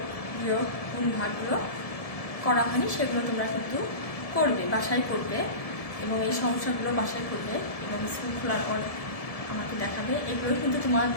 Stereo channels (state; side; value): late; right; 1.7 ms